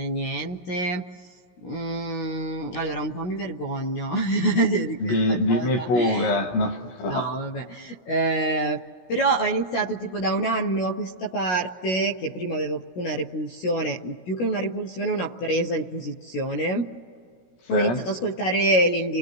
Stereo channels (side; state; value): right; late; 17 ms